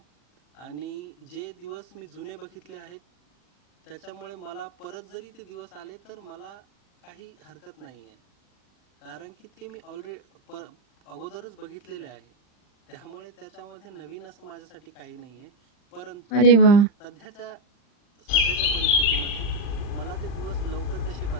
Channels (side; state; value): right; late; 40 ms